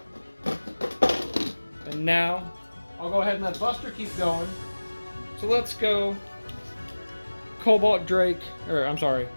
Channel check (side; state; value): both; inverted; correlation -1.00